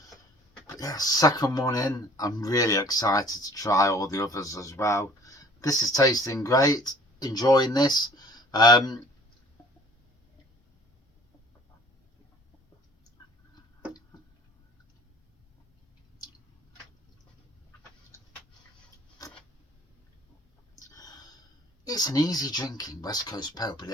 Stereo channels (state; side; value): normal; both; correlation 0.53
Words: yeah, second one in. I'm really excited to try all the others as well. This is tasting great. Enjoying this. It's an easy drinking West Coast pale, but